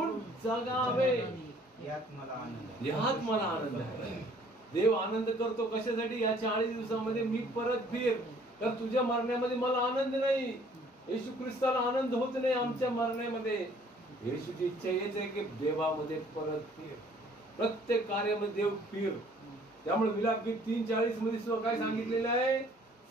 जगावे यात मला आनंद आहे. देव आनंद करतो कशासाठी? या 40 दिवसामध्ये मी परत फिर. तर तुझ्या मरण्यामध्ये मला आनंद नाही. येशू ख्रिस्ताला आनंद होत नाही आमच्या मरण्यामध्ये. येशूची इच्छा हेच आहे की देवामध्ये परत फिर. प्रत्येक कार्यामध्ये देव फिर. त्यामुळे विलापगीत 3:40 मध्ये सुद्धा काय सांगितलेलं आहे?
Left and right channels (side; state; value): both; normal; correlation 0.58